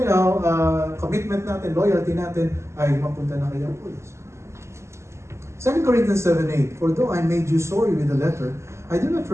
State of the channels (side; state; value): left; late; 0.13 ms